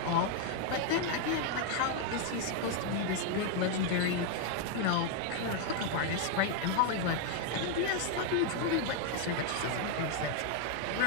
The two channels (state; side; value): different; both; correlation 0.00